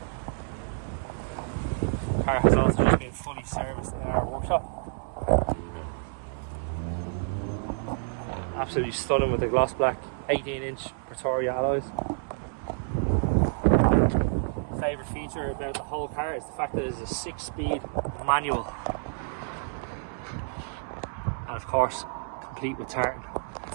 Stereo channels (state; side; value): silent; left; 59 dB below the other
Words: The car has also just been fully serviced in our workshop. Absolutely stunning with the gloss black 18-inch Pretoria alloys. Favourite feature about the whole car is the fact that it is a 6-speed manual, and of course complete with tartan.